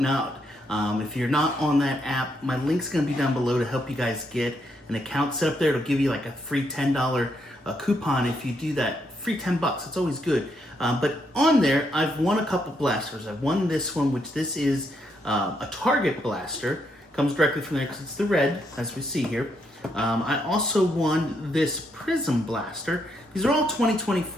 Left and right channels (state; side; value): normal; both; correlation 0.77